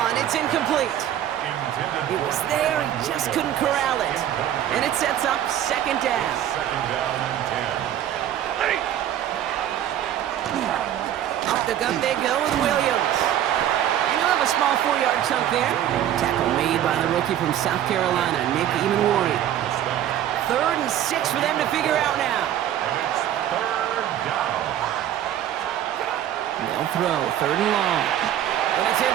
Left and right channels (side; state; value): left; quieter; 11.2 dB